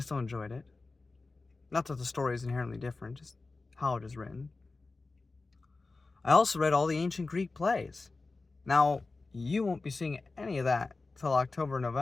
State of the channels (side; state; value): right; quieter; 3.7 dB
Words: still enjoyed it. Not that the story is inherently different, just how it is written. I also read all the ancient Greek plays. Now, you won't be seeing any of that till October,